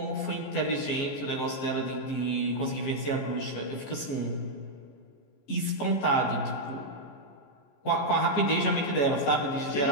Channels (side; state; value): right; late; 14 ms